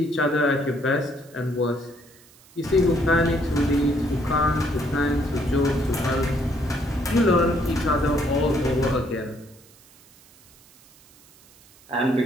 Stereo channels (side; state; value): right; noise; hiss, 27 dB below the sound